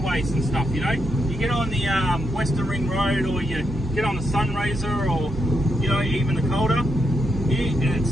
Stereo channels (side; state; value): both; normal; correlation 0.81